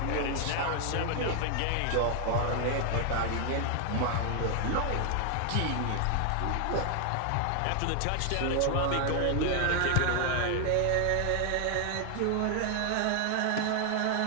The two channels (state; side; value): different; both; correlation 0.00